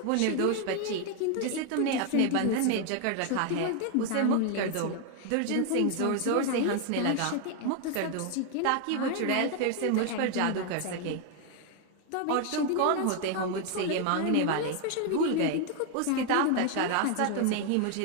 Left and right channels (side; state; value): both; different; correlation 0.01